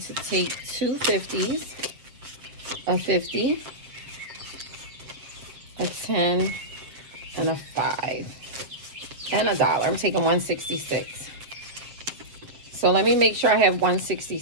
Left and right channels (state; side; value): late; left; 7.5 ms